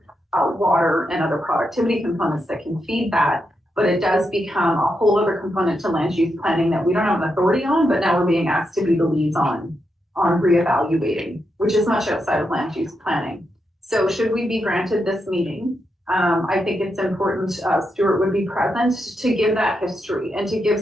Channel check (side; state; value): both; normal; correlation 0.84